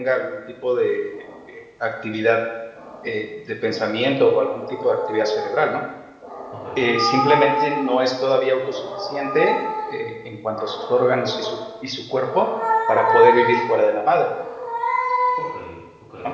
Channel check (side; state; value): both; identical; correlation 1.00